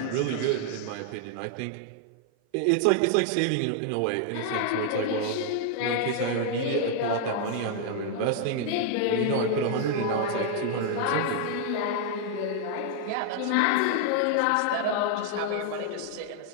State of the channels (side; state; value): both; different; correlation 0.00